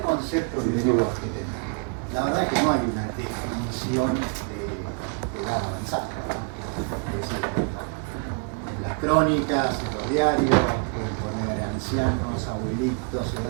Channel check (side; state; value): left; quieter; 39.3 dB